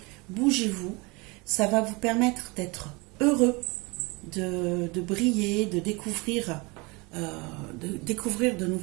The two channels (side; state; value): left; quieter; 26.8 dB